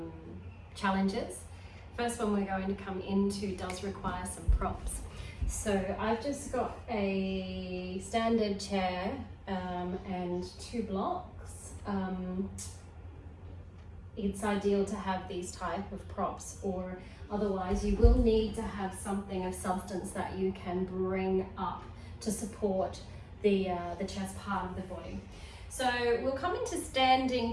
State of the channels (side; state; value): both; identical; correlation 1.00